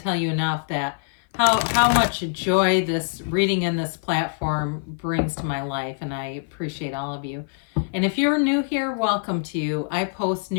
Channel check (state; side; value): silent; right; 55 dB below the other